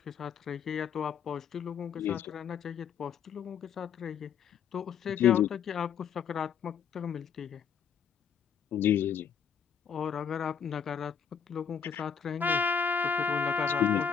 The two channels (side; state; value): right; quieter; 7.4 dB